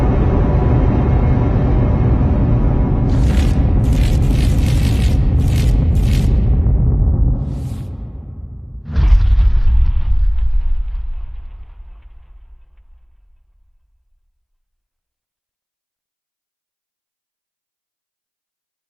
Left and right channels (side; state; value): both; identical; correlation 1.00